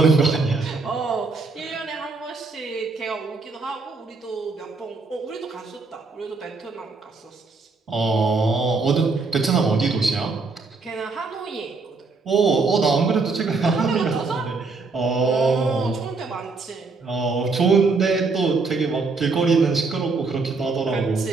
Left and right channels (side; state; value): left; quieter; 4.0 dB